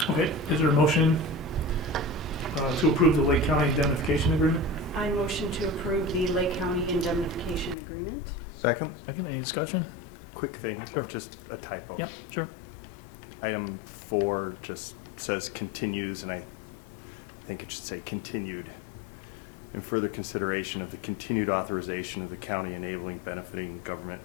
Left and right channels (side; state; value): right; drops out; at 7.8 s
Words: But. Okay, is there a motion to approve the Lake County indemnification agreement? I motion to approve the Lake County indemnification agreement. Second. Any discussion? Quick thing, just a typo. Yeah, sure. Item 4 just says continues, and I think it should say continued. In further consideration of the continued authorization of the county enabling benefiting government